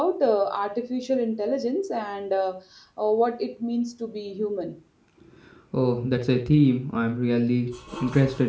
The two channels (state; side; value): identical; both; correlation 1.00